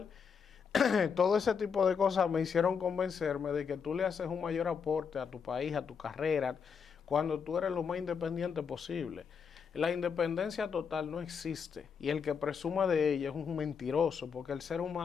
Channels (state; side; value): quieter; right; 6.3 dB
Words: todo ese tipo de cosas me hicieron convencerme de que tú le haces un mayor aporte a tu país, a tu carrera, cuando tú eres lo más independiente posible. La independencia total no existe y el que presuma de ella es un mentiroso, porque el ser